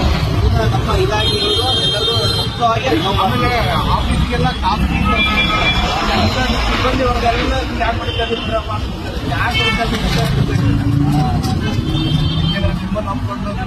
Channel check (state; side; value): identical; both; correlation 1.00